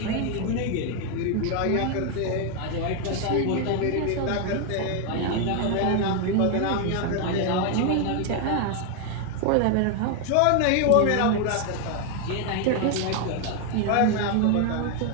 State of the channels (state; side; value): different; both; correlation 0.01